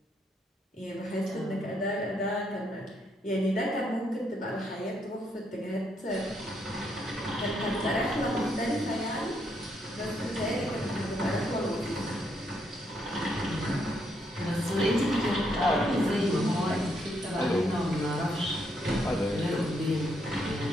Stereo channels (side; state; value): both; normal; correlation 0.75